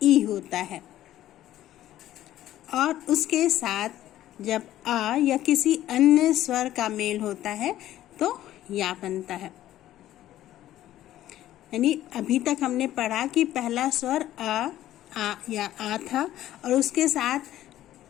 होता है और उसके साथ जब आ या किसी अन्य स्वर का मेल होता है तो या बनता है। यानी अभी तक हमने पढ़ा कि पहला स्वर आ या आ था और उसके साथ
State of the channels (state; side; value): quieter; right; 13.4 dB